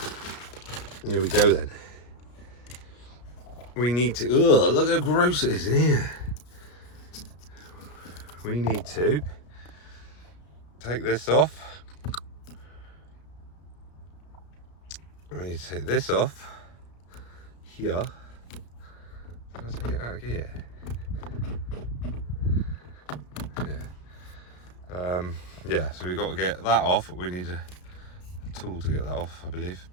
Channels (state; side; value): late; right; 33 ms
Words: here we go then. We need to, ugh, look how gross it is in here. We need to take this off. We need to take this off here. Did I take it out of gear? Yeah, so we've got to get that off, but we need a tool to get that off, I believe,